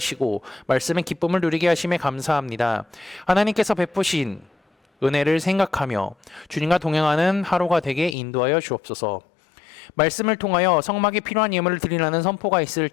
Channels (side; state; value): right; drops out; at 8.2 s